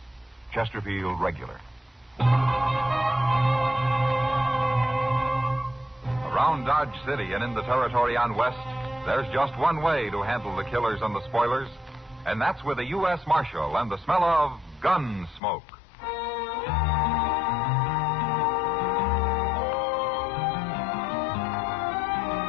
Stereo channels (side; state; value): right; drops out; at 15.4 s